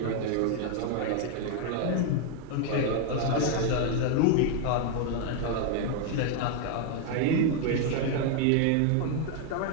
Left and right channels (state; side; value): different; both; correlation 0.00